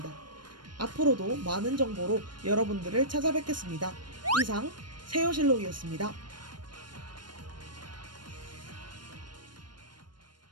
앞으로도 많은 정보로 여러분들을 찾아뵙겠습니다. 이상 세요실록이었습니다.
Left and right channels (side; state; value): left; late; 0.71 ms